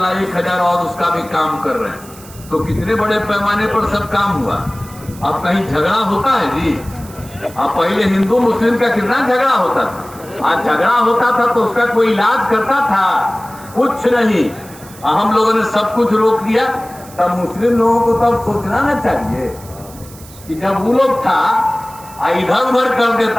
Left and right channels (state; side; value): noise; right; hiss, 20 dB below the sound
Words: 1,000 और उसका भी काम कर रहे हैं। तो कितने बड़े पैमाने पर सब काम हुआ। अब कहीं झगड़ा होता है जी, अब पहले हिंदू मुस्लिम का कितना झगड़ा होता था, आज झगड़ा होता था तो उसका कोई इलाज करता था, कुछ नहीं। हम लोगों ने सब कुछ रोक दिया। तब मुस्लिम लोगों को तब सोचना ना चाहिए कि जब वो लोग था इधर उधर कर